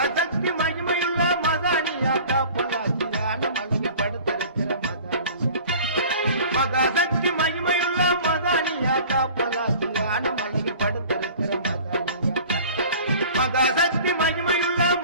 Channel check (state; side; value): inverted; both; correlation -0.44